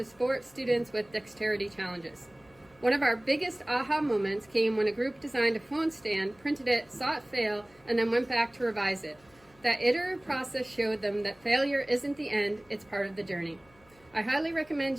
support students with dexterity challenges. One of our biggest aha moments came when a group designed a phone stand, printed it, saw it fail, and then went back to revise it. That iterative process showed them that failure isn't the end, it's part of the journey. I highly recommend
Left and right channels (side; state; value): left; noise; hum, 30 dB below the sound